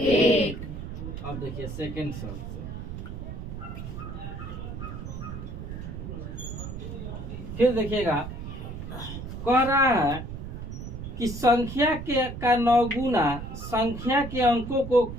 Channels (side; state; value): right; noise; rumble, 8 dB below the sound